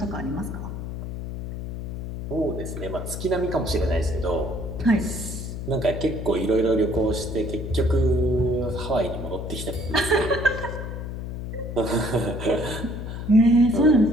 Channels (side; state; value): left; noise; hum, 7 dB below the sound